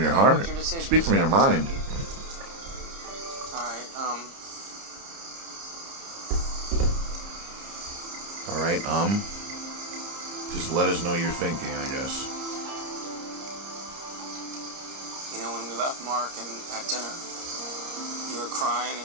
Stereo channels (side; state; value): left; late; 30 ms